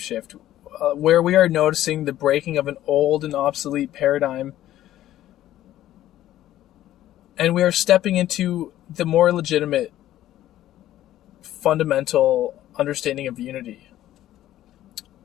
where we are noticing the breaking of an old and obsolete paradigm, and we are stepping into the more legitimate, fundamental understanding of unity.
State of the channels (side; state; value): right; quieter; 13.4 dB